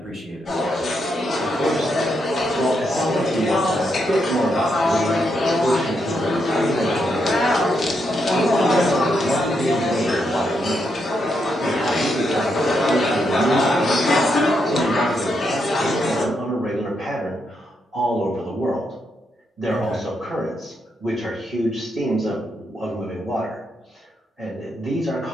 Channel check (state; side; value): normal; both; correlation 0.80